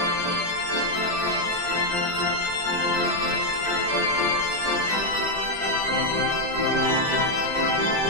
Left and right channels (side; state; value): left; late; 5.0 ms